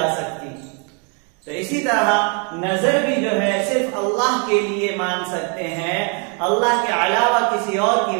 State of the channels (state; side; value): quieter; left; 36.9 dB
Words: سکتی۔ تو اسی طرح نظر بھی جو ہے صرف اللہ کے لیے مان سکتے ہیں، اللہ کے علاوہ کسی اور کی